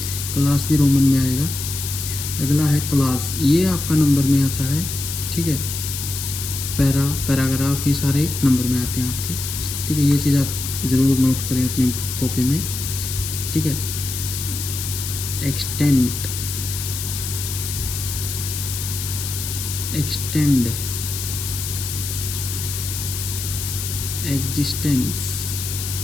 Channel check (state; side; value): noise; left; hiss, 5 dB below the sound